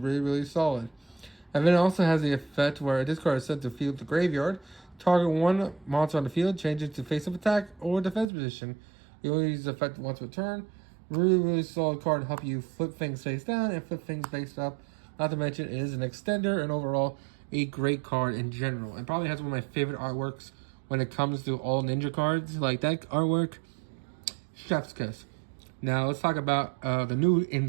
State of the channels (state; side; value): drops out; left; at 8.2 s